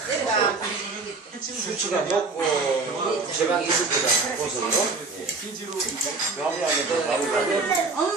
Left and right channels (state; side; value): quieter; left; 3.9 dB